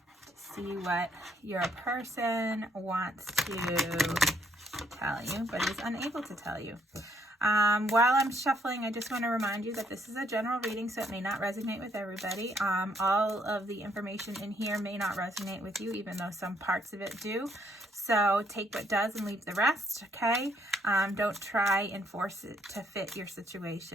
see what your person wants to tell you but is unable to tell you. While I'm shuffling, I just want to remind you that this is a general reading, so it may not resonate with everybody. All of the information in here may not resonate with you, even though some parts of it do. So take what does and leave the rest, okay? Don't try and force it to fit your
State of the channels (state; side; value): normal; both; correlation 0.69